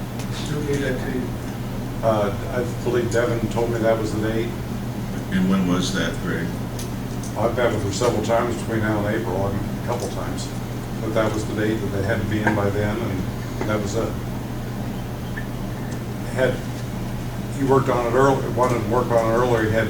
Who gave that to you? I believe Devin told me that was the date. And when was that, Greg? I've met with her several times between now and April, a couple times. But that was the date that they had to be in by then, and that was it. Had he worked on it early, wanted to work on it earlier,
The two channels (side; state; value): both; identical; correlation 1.00